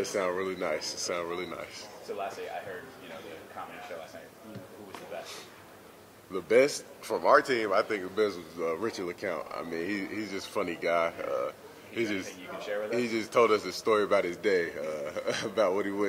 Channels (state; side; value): identical; both; correlation 1.00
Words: sound really nice. It sounds really nice. So lastly, I heard, you know, the comedy show last night. Who was the best? The best from our team, I think the best was Richard LeCount. I mean, he's just a funny guy. Anything you can share with us? He just told us a story about his day, about what he